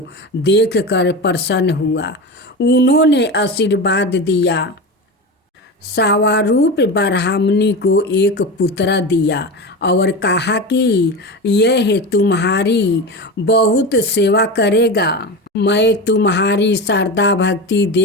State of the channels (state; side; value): normal; both; correlation 0.24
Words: देखकर प्रसन्न हुआ। उन्होंने आशीर्वाद दिया। सावारूप ब्राह्मणी को एक पुत्र दिया और कहा कि यह तुम्हारी बहुत सेवा करेगा। मैं तुम्हारी श्रद्धा भक्ति